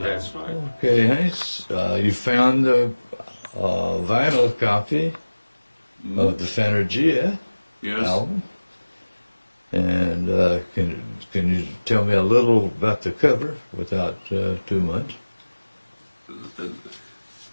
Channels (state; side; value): inverted; both; correlation -1.00